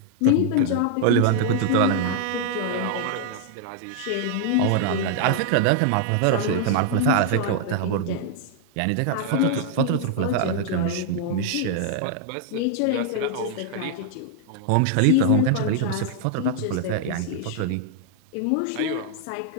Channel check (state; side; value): different; both; correlation 0.00